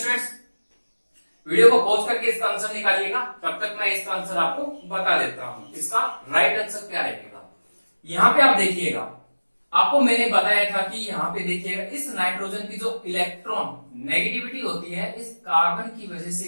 वीडियो को पॉज करके इसका आंसर निकालिएगा, तब तक मैं इसका आंसर आपको बता देता हूं। इसका राइट आंसर क्या रहेगा, यहाँ पे आप देखिएगा। आपको मैंने बताया था कि यहाँ पे देखिएगा, इस नाइट्रोजन की जो इलेक्ट्रॉन नेगेटिविटी होती है इस कार्बन की वजह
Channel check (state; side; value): inverted; both; correlation -1.00